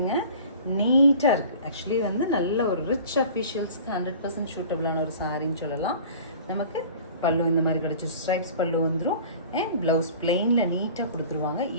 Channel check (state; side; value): inverted; both; correlation -0.44